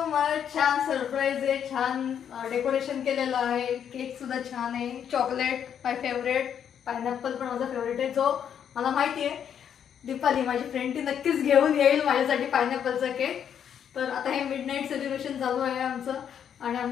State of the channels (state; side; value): quieter; right; 8.6 dB